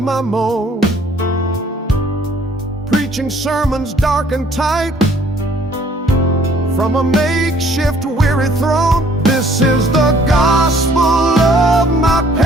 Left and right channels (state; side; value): normal; both; correlation 0.59